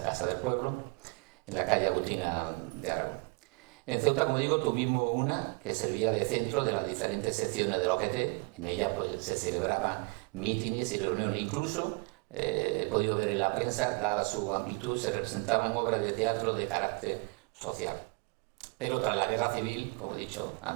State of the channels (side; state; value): left; quieter; 32.1 dB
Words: del Pueblo, en la calle Agustina de Aragón. En Ceuta, como digo, tuvimos una que servía de centro de las diferentes secciones de la OGT. En ella pues, se celebraban mítines y reuniones. Incluso, he podido ver en la prensa, dada su amplitud, se representaban obras de teatro de carácter social. Pero tras la guerra civil, como he dicho